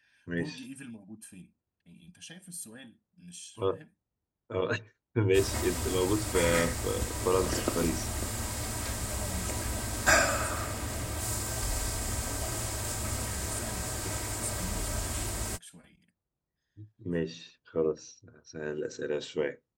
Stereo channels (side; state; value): both; identical; correlation 1.00